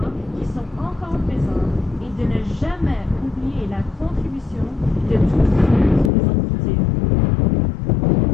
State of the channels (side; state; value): right; drops out; at 6.1 s